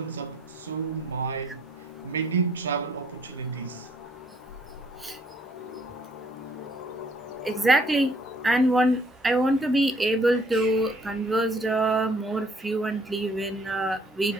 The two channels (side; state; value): both; normal; correlation 0.62